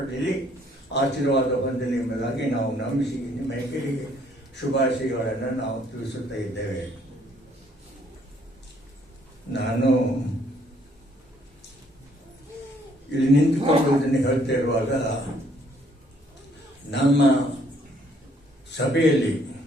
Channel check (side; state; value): both; normal; correlation 0.65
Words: ಆಶೀರ್ವಾದ ಹೊಂದಲಿ ಎಂಬುದಾಗಿ ನಾವು ನಂಬಿಸಿ ನಿಮ್ಮೆಲ್ಲರಿಗೆ ಶುಭಾಶಯಗಳನ್ನು ನಾವು ತಿಳಿಸುತ್ತಾ ಇದ್ದೇವೆ. ನಾನು ಇಲ್ಲಿ ನಿಂತುಕೊಂಡು ಇದನ್ನು ಹೇಳ್ತಾ ಇರುವಾಗ ನಮ್ಮ ಸಭೆಯಲ್ಲಿ